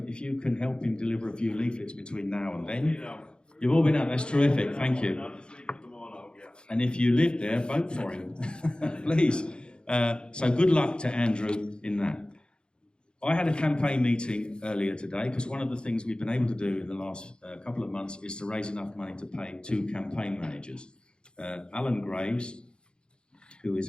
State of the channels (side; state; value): right; late; 0.051 ms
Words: if you can help him deliver a few leaflets between now and then. You've all been out, that's terrific, thank you. And if you live there, vote for him, please. So good luck to Andrew in that. I had a campaign meeting earlier today, because one of the things we've been able to do in the last couple of months is to raise enough money to pay 2 campaign managers. Alan Graves, who